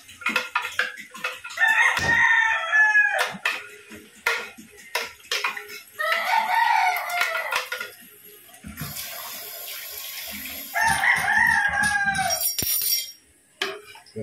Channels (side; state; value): both; identical; correlation 1.00